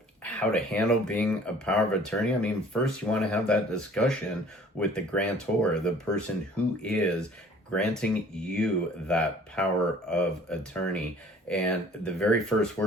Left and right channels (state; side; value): normal; both; correlation 0.52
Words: How to handle being a power of attorney. First you want to have that discussion with the grantor, the person who is granting you that power of attorney. And the very first